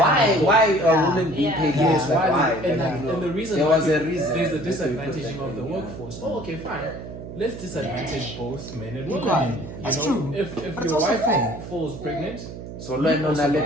are women being paid less? Like, why? And the reason there why was a reason. there's a disadvantaging of the workforce. Oh, okay, fine. Let's disadvantage both men and women. You That's know, true. if But it's your also wife fair. falls pregnant, So learn on a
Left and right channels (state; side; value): noise; right; hum, 11 dB below the sound